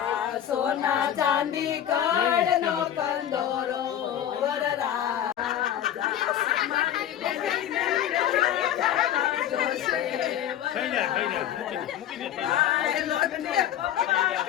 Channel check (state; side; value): quieter; right; 10.8 dB